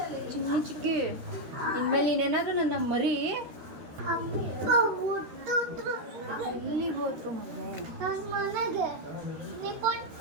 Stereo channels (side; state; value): left; late; 13 ms